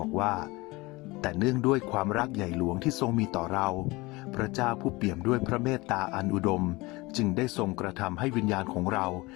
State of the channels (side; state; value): right; quieter; 22.7 dB